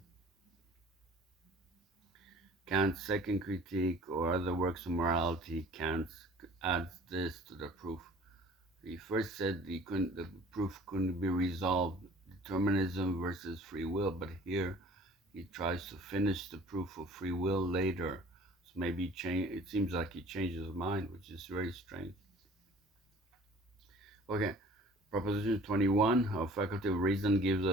Kant's second critique or other works of morality, Kant adds this to the proof. He first said the proof couldn't be resolved, determinism versus free will, but here he tries to finish the proof of free will later. So maybe it seems like he changes his mind, which is very strange. Okay, Proposition 21, our faculty of reason gives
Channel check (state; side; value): normal; both; correlation 0.49